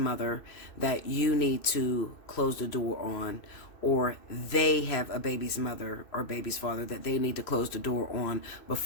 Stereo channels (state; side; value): late; right; 2.6 ms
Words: that you need to close the door on, or they have a baby's mother or baby's father that they need to close the door on